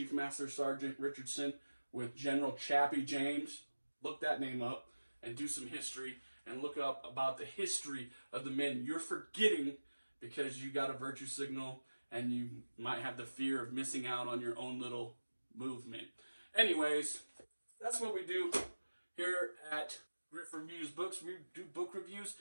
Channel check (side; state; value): both; inverted; correlation -1.00